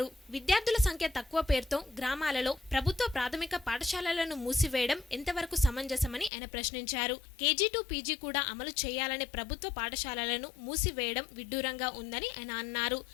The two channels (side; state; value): right; drops out; at 6.3 s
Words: విద్యార్థుల సంఖ్య తక్కువ పేరుతో గ్రామాలలో ప్రభుత్వ ప్రాథమిక పాఠశాలలను మూసివేయడం ఎంతవరకు సమంజసం అని ఆయన ప్రశ్నించారు. కేజీ టు పీజీ కూడా అమలు చేయాలనే ప్రభుత్వ పాఠశాలలను మూసివేయడం విడ్డూరంగా ఉందని ఆయన అన్నారు.